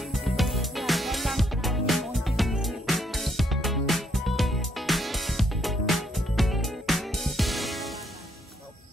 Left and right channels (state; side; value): normal; both; correlation 0.72